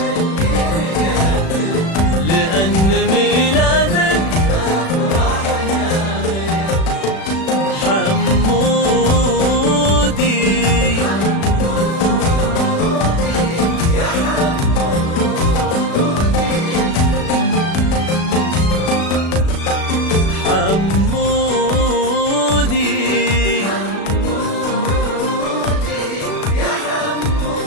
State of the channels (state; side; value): late; right; 36 ms